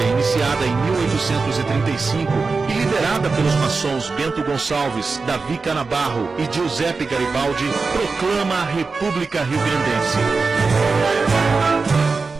iniciada em 1835 e liderada pelos maçons Bento Gonçalves, Davi Canabarro e Giuseppe Garibaldi, proclama a República Rio-Grandense.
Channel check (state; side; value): quieter; left; 4.3 dB